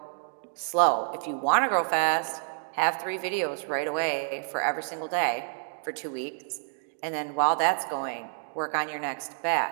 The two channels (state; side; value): silent; left; digital silence